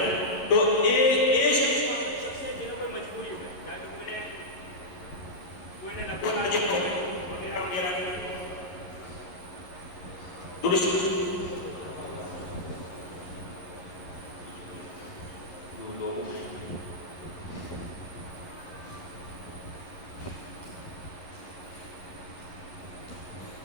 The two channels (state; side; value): late; right; 11 ms